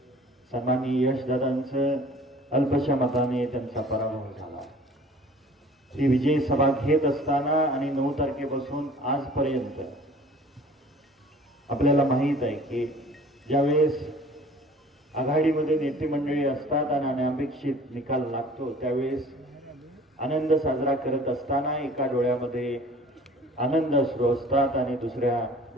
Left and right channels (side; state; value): both; normal; correlation 0.48